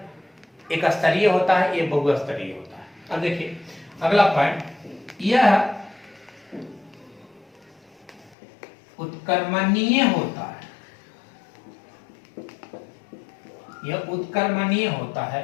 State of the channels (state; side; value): drops out; right; at 8.3 s